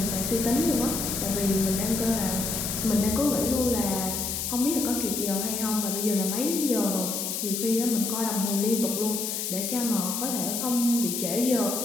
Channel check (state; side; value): noise; left; hiss, 2 dB below the sound